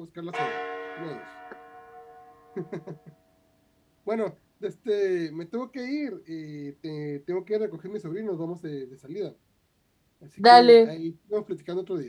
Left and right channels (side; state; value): both; identical; correlation 1.00